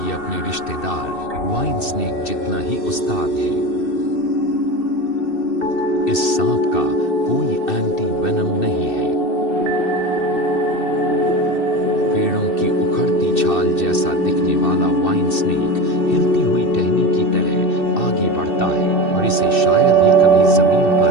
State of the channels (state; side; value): late; right; 2.6 ms